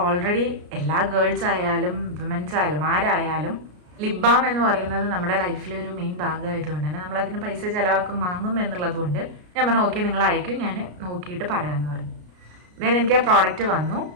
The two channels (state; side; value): late; left; 33 ms